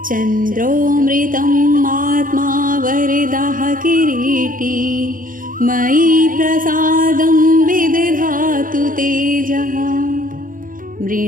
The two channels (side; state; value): left; late; 0.40 ms